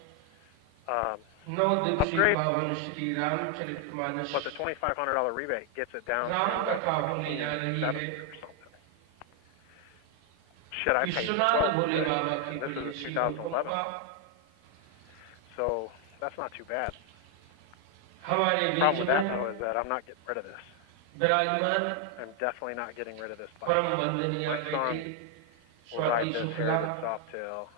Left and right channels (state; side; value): different; both; correlation 0.01